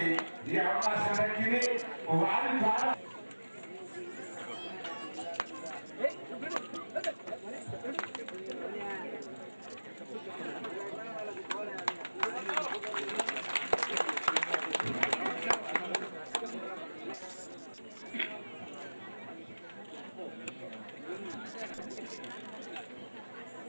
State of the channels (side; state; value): both; inverted; correlation -1.00